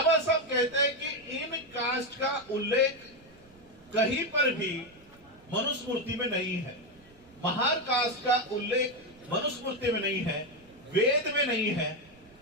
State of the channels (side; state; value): right; noise; rumble, 28 dB below the sound